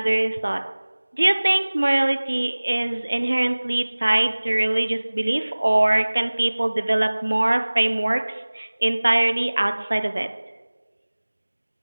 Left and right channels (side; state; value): both; inverted; correlation -1.00